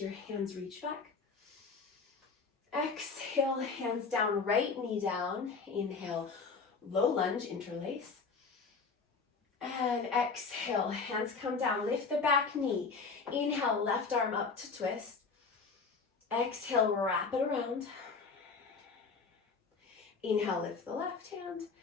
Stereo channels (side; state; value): right; quieter; 4.8 dB